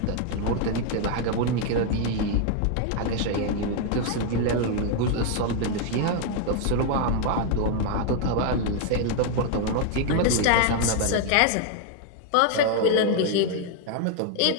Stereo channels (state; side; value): different; both; correlation 0.00